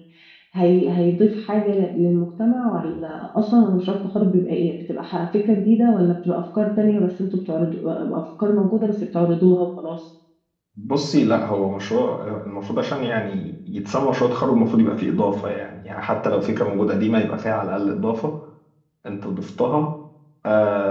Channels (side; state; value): both; identical; correlation 1.00